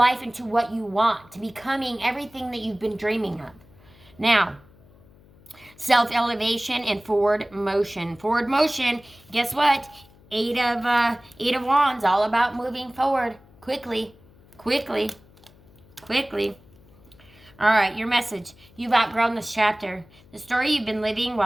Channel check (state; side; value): noise; left; hum, 26 dB below the sound